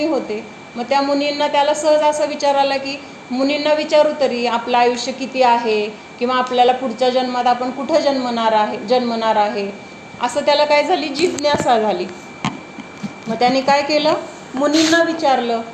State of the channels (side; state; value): both; identical; correlation 1.00